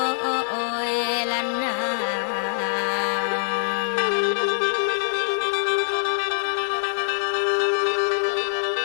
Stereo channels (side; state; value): right; silent; digital silence